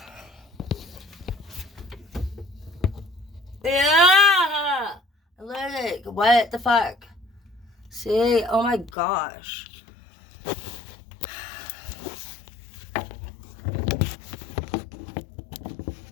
Yeah! Allergic. What the fuck? See? Oh my gosh.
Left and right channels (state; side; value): drops out; right; at 8.9 s